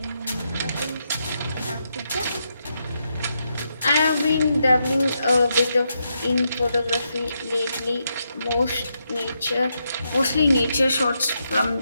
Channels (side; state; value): both; inverted; correlation -0.82